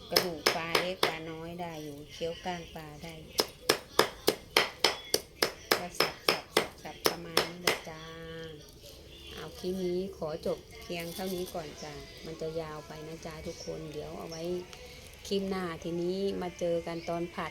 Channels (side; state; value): both; identical; correlation 1.00